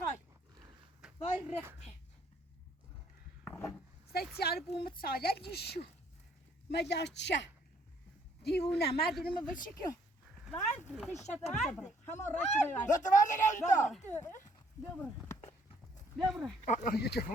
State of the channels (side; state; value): both; normal; correlation 0.65